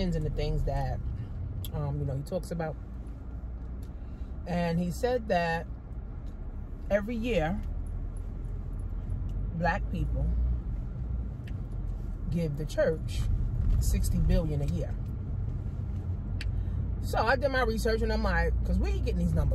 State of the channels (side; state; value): both; identical; correlation 1.00